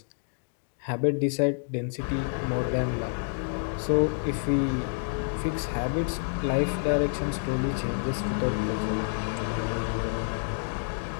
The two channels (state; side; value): silent; right; digital silence